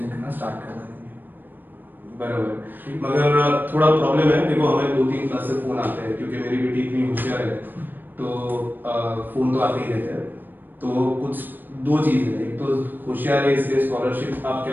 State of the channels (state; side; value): late; left; 0.091 ms